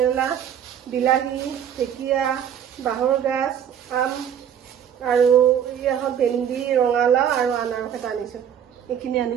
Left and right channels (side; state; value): left; quieter; 9.0 dB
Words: বিলাহী ঢেকীয়া বাহৰ গাছ আম আৰু ইয়া হল ভেন্দি ৰঙালাও আৰু আনাৰস এটা আনিছো এইখিনি